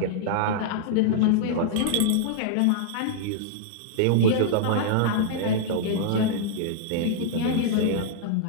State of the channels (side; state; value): both; different; correlation -0.02